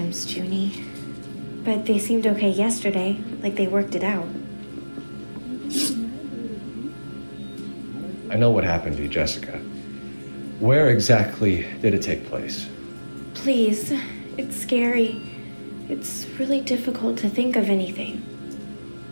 Junie. But they seemed okay yesterday, like they worked it out. I know what happened to you, Jessica. Where exactly did it take place? Please, it's scary. It's really difficult to think of anything.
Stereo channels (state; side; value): inverted; both; correlation -1.00